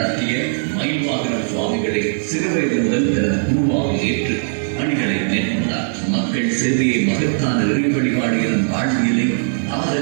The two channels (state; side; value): silent; left; 60 dB below the other